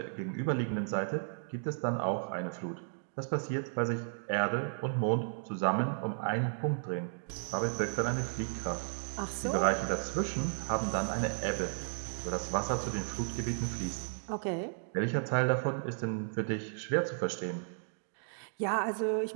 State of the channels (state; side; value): silent; left; digital silence